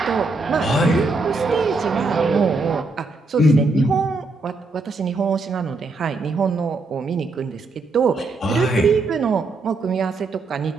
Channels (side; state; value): left; quieter; 3.5 dB